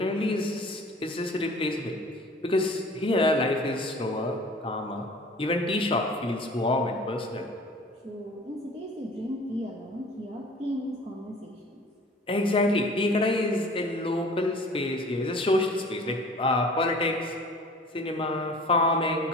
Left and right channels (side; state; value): both; normal; correlation 0.46